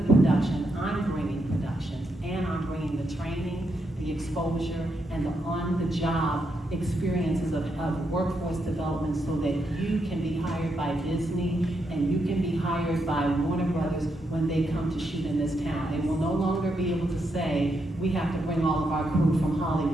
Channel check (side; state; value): both; normal; correlation 0.81